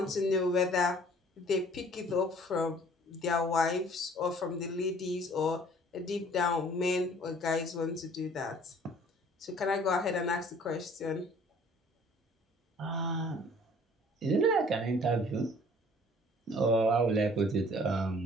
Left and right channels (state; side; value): normal; both; correlation 0.54